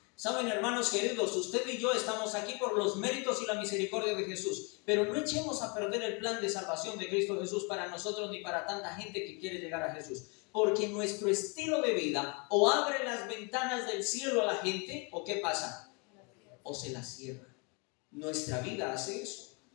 Saben, hermanos queridos, usted y yo estamos aquí por los méritos y la misericordia de Jesús, pero no echemos a perder el plan de salvación de Cristo Jesús para nosotros ni para tanta gente que quiere llegar a Jesús, porque nuestro estilo de vida o abre las ventanas del cielo a la gente, o ¿qué pasa? O se las cierra. Nuestra vida hace eso.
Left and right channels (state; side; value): quieter; right; 32.5 dB